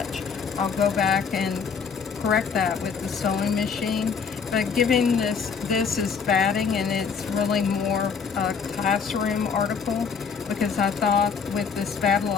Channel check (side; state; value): right; quieter; 6.0 dB